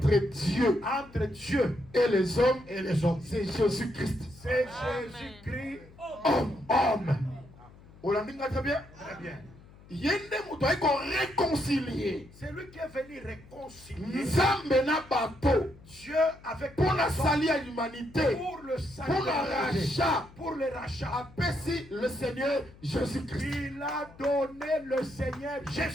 Dieu et les hommes. C'est Jésus-Christ. C'est Jésus-Christ, Homme. On l'a dit très bien. Très bien. Il y a des gens qui ont réconcilié. C'est lui qui est venu réconcilier Dieu avec pour la salut à l'humanité. pour le salut, Pour le rachat. pour le rachat. Appelle le Seigneur Jésus-Christ. Il a donné le Seigneur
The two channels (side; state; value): left; noise; hum, 22 dB below the sound